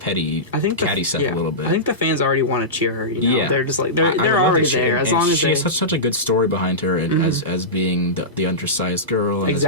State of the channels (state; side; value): normal; both; correlation -0.16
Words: catty stuff a little bit. I think the fans already want to cheer her. You know? They're just like they're already there. As long as she has such a good story behind her, and as being the undersized girl, and as